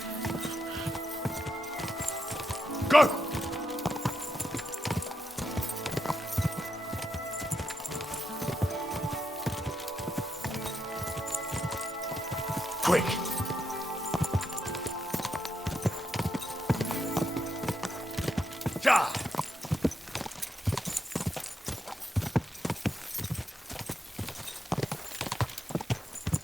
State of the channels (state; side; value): normal; both; correlation 0.83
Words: Go! Quick! Ja!